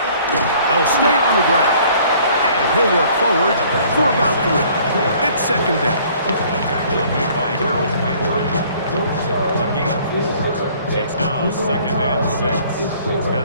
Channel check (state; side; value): inverted; both; correlation -0.56